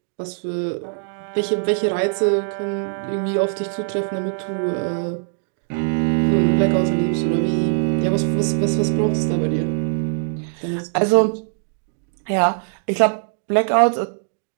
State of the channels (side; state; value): left; silent; digital silence